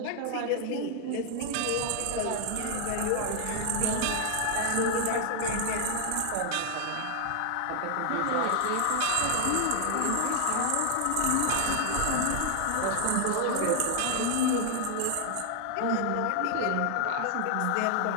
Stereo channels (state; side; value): different; both; correlation 0.00